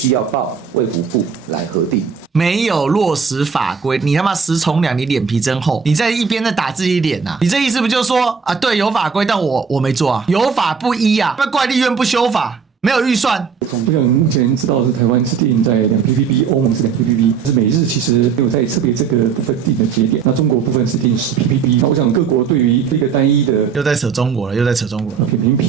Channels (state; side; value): quieter; left; 6.2 dB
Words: 要報衛福部來核定。沒有落實法規，你他媽食蟲兩，你臉皮真厚！你在一邊在打自己臉啊！你這意思不就是說啊，對，有法規，但我沒做啊，有法不依啊，那怪立院不修法，沒有預算。我想目前知道的是台灣是定在2 ppb， 歐盟是2 ppb， 但是美日其實沒有在特別這個部分定的節點。那中國部分是定10 ppb。那我想各國對於這個單一的又在扯中國了，又在扯中國了。扁平